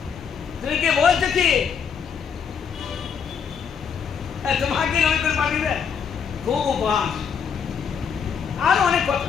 তুমি কি বলছো কি তোমাকে নবী করে পাঠিয়েবে? খুব উপহাস, আর অনেক কথা।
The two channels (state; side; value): quieter; right; 6.9 dB